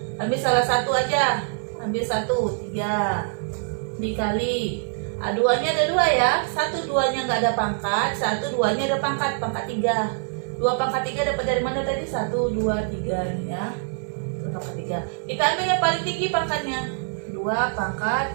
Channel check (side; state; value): left; silent; digital silence